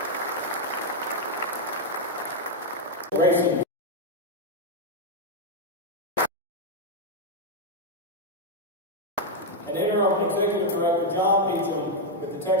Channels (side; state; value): both; normal; correlation 0.01